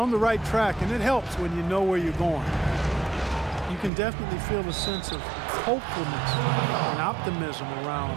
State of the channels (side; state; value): left; drops out; at 3.9 s